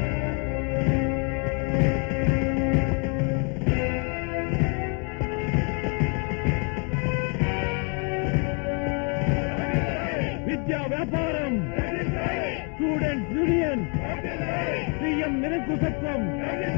విద్యా వ్యాపారం, స్టూడెంట్స్ యూనియన్, సీఎం నిరంకుశత్వం,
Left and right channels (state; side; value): quieter; right; 37.1 dB